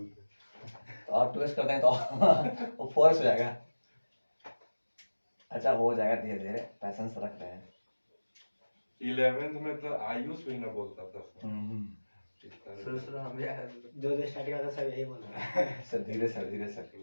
हैं। तो और 2x करते हैं तो वो 4x हो जाएगा। अच्छा हो जाएगा धीरे धीरे, पैसेंस रख रहे हैं। 11th में तो आयुष भी ना बोलता था सर। इस तरह शुरू से। शुरू हम भी आए जो स्टार्टिंग आता सब यही बोल रहा है। सर धीरे सर, धीरे सर।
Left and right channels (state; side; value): inverted; both; correlation -1.00